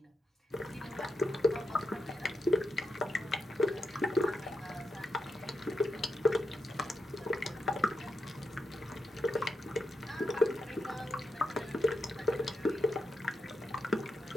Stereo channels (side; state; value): both; normal; correlation 0.84